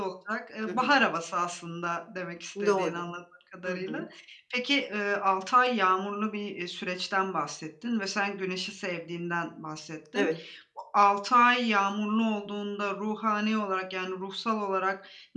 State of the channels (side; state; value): both; identical; correlation 1.00